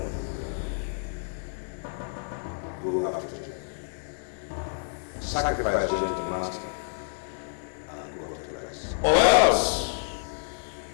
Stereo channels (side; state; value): right; silent; digital silence